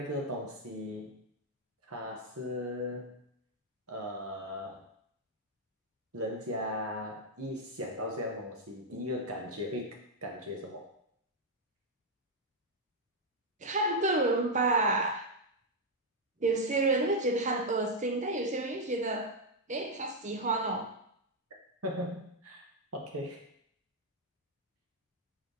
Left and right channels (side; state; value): both; normal; correlation -0.01